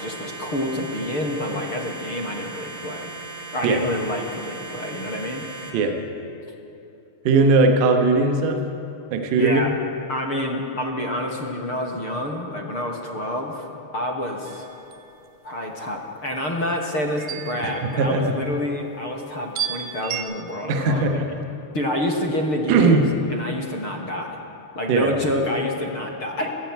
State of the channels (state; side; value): late; right; 6.6 ms